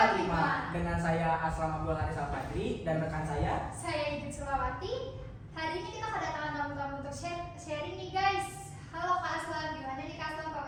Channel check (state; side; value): identical; both; correlation 1.00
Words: dengan saya Aslam Abdul Haris Al-Fadri dan rekan saya Idit Sulawati. Hari ini kita kedatangan tamu-tamu untuk sharing nih guys. Halo Kak Aslam, gimana nih Kak Aslam